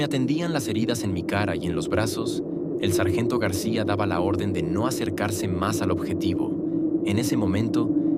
atendían las heridas en mi cara y en los brazos, el sargento García daba la orden de no acercarse más al objetivo. En ese momento,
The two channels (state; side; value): identical; both; correlation 1.00